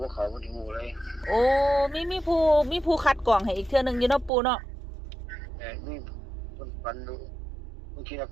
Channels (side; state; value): left; drops out; at 4.3 s